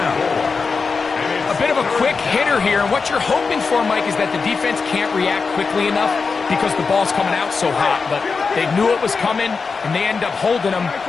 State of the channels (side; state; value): right; quieter; 4.8 dB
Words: A bit of a quick hitter here, and what you're hoping for, Mike, is that the defense can't react quickly enough because the ball's coming out so hot. But they knew it was coming, and they end up holding them